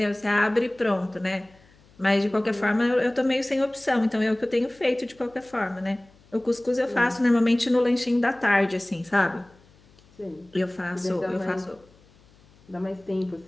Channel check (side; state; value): left; noise; hum, 29 dB below the sound